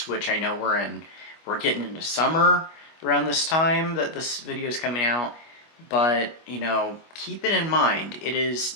which I know we're getting into summer around this time that this video is coming out. But, you know, keep it in mind. It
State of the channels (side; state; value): right; late; 25 ms